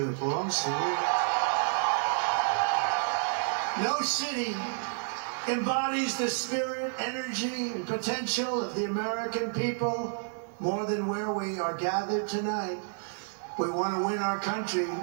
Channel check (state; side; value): silent; left; digital silence